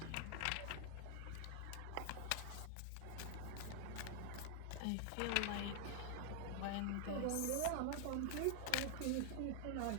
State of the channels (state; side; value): different; both; correlation 0.00